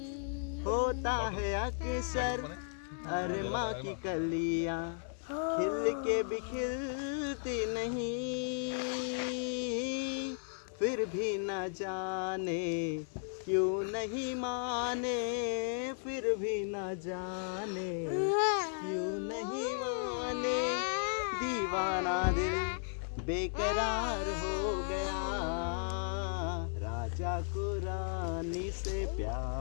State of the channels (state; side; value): silent; right; 54 dB below the other